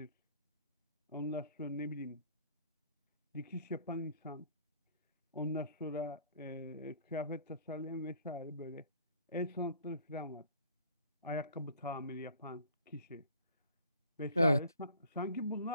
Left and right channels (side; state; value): both; inverted; correlation -0.53